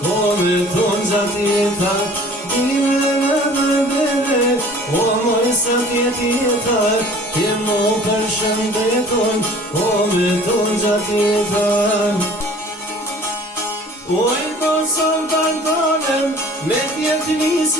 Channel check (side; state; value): both; normal; correlation 0.49